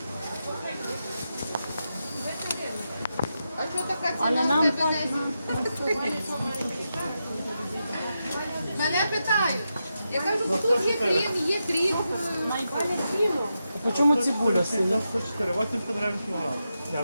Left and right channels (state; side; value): inverted; both; correlation -0.87